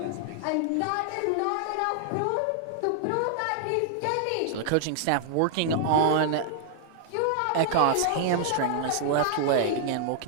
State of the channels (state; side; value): different; both; correlation -0.01